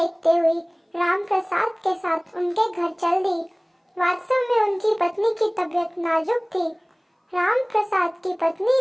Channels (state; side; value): identical; both; correlation 1.00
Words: हुई राम प्रसाद के साथ उनके घर चल दी। वास्तव में उनकी पत्नी की तबीयत नाजुक थी। राम प्रसाद की